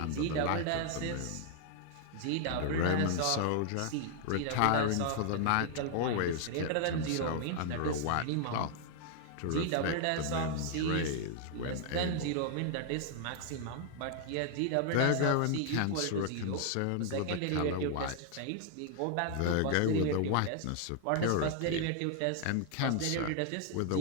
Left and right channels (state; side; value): different; both; correlation 0.00